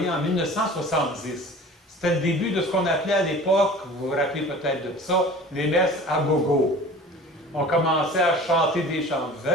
en 1970. C'était le début de ce qu'on appelait à l'époque, vous vous rappelez peut-être de ça, les messes à gogo. On commençait à chanter des chants. «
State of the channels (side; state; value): both; normal; correlation 0.42